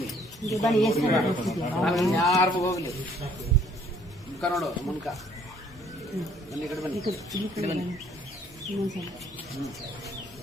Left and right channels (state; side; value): normal; both; correlation 0.61